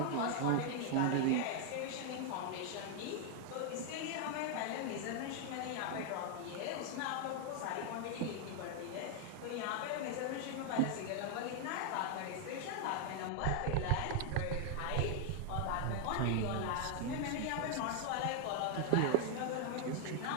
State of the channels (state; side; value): different; both; correlation 0.00